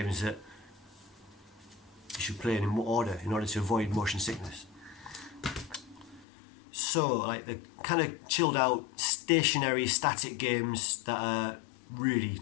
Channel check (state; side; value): drops out; right; at 6.2 s